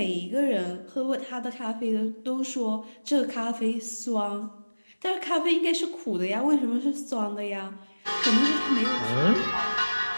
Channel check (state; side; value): inverted; both; correlation -1.00